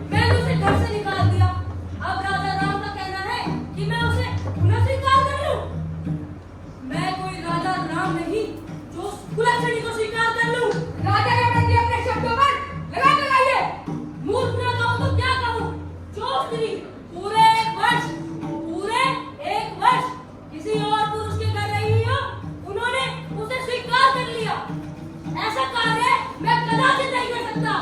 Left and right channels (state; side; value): identical; both; correlation 1.00